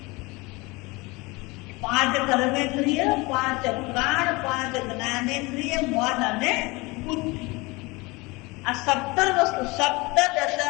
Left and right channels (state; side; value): quieter; right; 24.4 dB